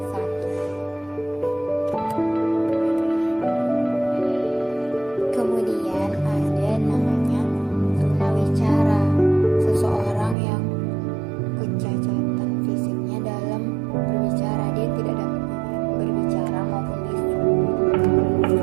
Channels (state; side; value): drops out; left; at 10.4 s